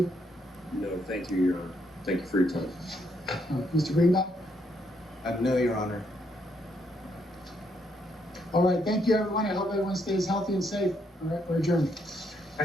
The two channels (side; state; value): both; normal; correlation 0.74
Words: No, thank you, Your Honor. Thank you for your time. Mr. Greenbaum? No, Your Honor. All right, thank you, everyone. I hope everyone stays healthy and safe. All right, we're adjourned.